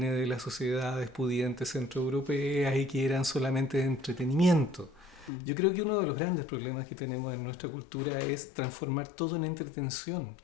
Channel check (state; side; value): drops out; right; at 5.3 s